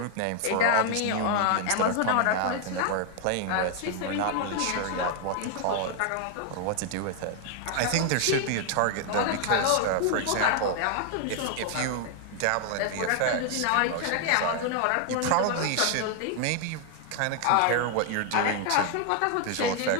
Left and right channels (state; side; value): different; both; correlation 0.00